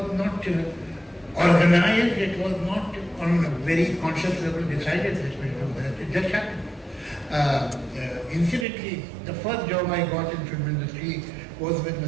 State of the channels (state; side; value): drops out; left; at 8.7 s